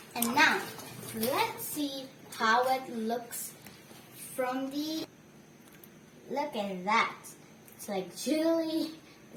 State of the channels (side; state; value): both; identical; correlation 1.00